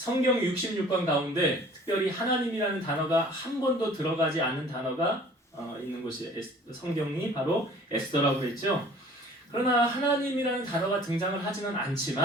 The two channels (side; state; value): both; normal; correlation 0.50